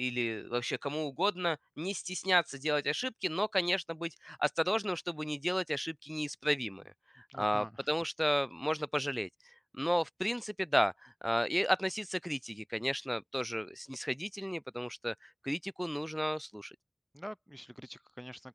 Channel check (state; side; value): identical; both; correlation 1.00